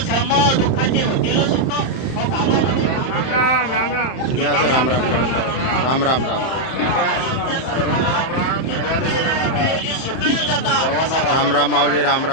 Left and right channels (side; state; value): right; late; 31 ms